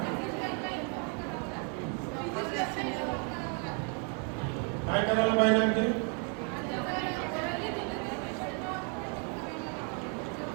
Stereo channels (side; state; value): left; quieter; 38.7 dB